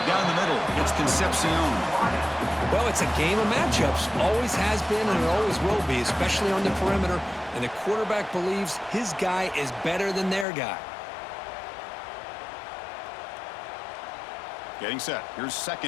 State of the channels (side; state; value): right; drops out; at 10.5 s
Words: down the middle. It's Concepcion. Well, it's a game of matchups. Always has been and it always will be, especially on the perimeter. And the quarterback believes his guy is better than their guy. Getting set. Here's